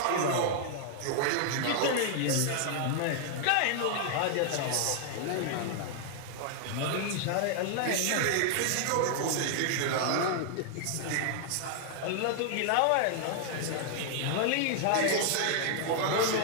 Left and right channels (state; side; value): different; both; correlation 0.00